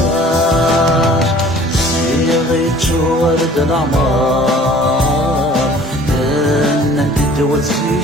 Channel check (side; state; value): both; normal; correlation 0.50